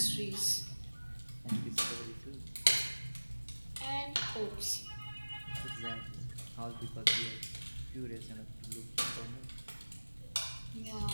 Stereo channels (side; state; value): both; inverted; correlation -1.00